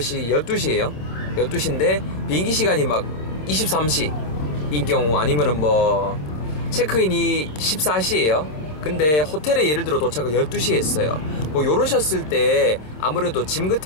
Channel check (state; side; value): late; right; 26 ms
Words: 12시에요 12시인데 비행기 시간이 막 23시 인 경우, 아니면은 뭐 체크인이 14시에요 근데 호텔에 예를 들어 도착을 12시에 했어요. 뭐 요러셨을 때 아무래도 짐